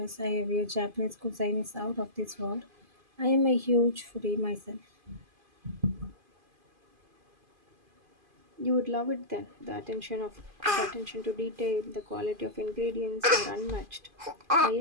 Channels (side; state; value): left; late; 2.5 ms